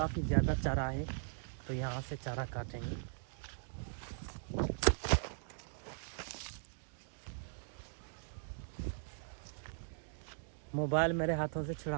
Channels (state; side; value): silent; left; digital silence